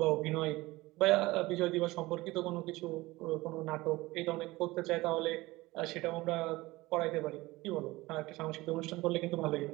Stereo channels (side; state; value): left; quieter; 20.0 dB